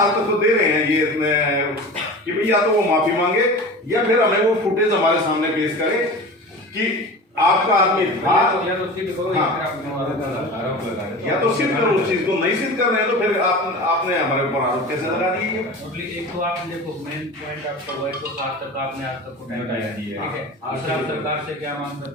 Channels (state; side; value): normal; both; correlation 0.34